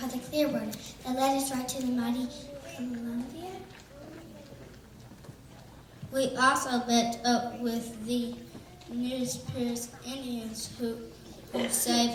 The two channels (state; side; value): identical; both; correlation 1.00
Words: the Clearwater that led us right to the mighty Columbia. We also met up with the Nespiers Indians who